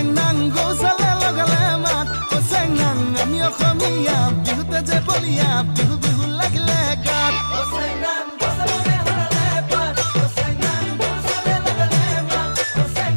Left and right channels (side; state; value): both; inverted; correlation -1.00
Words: গৌচালে লগালে মাত চেংনাং আমি অসমীয়া বিহুতে যে বলিয়া বিহু বিহু লাগিলে গাত